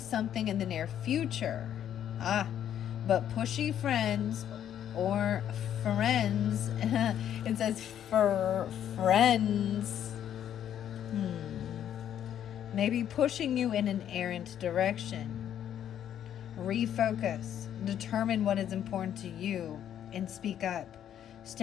in the near future. But pushy friends or friends, it says for friends, maybe pushing you in an errant direction. Refocus. Determine what is important to you and speak up.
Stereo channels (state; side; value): quieter; right; 10.1 dB